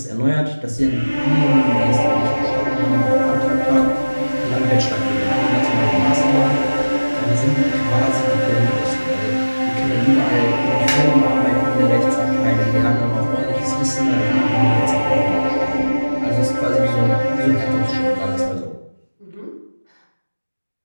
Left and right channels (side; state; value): both; inverted; correlation -1.00